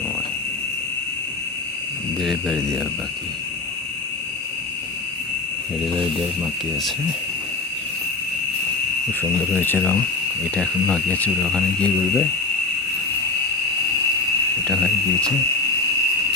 ডেলিভারি দেওয়া বাকি, ডেলিভারি দেওয়ার বাকি আছে। খুব সুন্দর হয়েছে রং। এটা এখন বাকি আছে, ওরা ওখানে গিয়ে ঘুরবে। এটা হয়ে গিয়েছে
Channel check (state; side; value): quieter; right; 3.6 dB